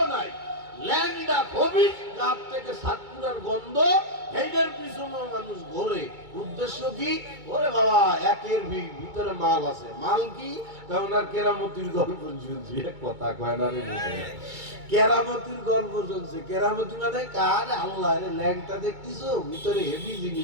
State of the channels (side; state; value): left; late; 2.2 ms